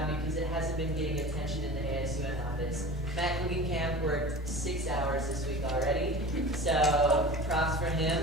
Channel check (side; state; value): both; normal; correlation 0.36